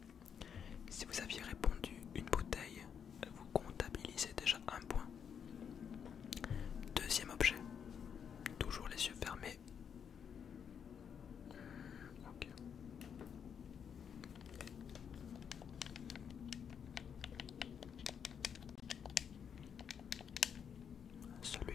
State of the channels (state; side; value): quieter; right; 7.5 dB